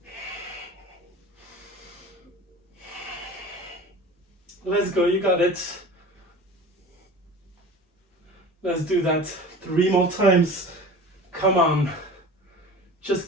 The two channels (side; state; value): both; normal; correlation 0.38